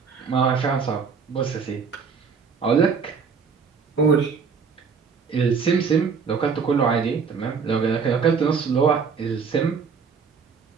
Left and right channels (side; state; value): left; quieter; 5.7 dB